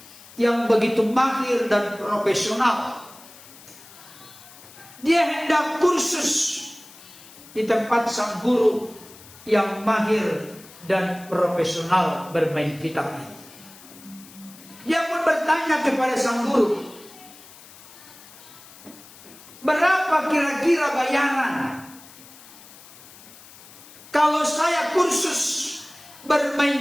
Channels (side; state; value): left; noise; hiss, 20 dB below the sound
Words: yang begitu mahir dan profesional. Dia hendak kursus di tempat sang guru yang mahir dan profesional bermain gitar ini. Dia pun bertanya kepada sang guru, berapa kira-kira bayaran kalau saya kursus